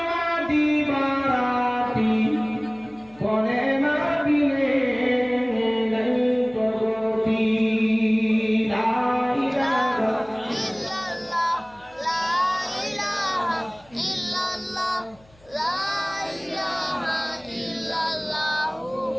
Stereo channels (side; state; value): left; noise; hum, 28 dB below the sound